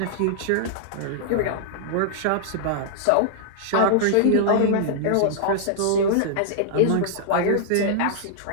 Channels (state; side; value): different; both; correlation -0.01